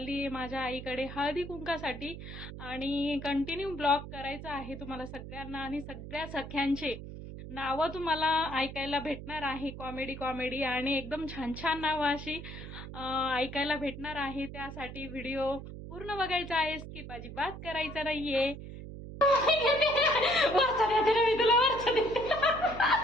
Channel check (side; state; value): right; noise; hum, 11 dB below the sound